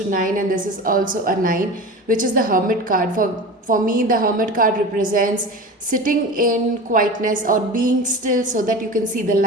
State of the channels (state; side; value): normal; both; correlation 0.32